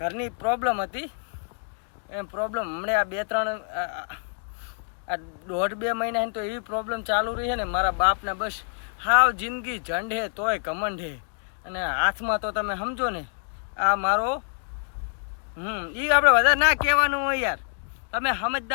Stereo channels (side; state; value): right; silent; 56 dB below the other